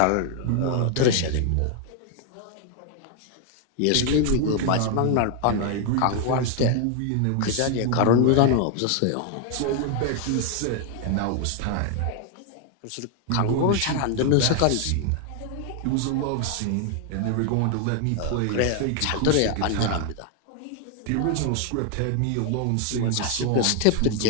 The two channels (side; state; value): both; different; correlation 0.00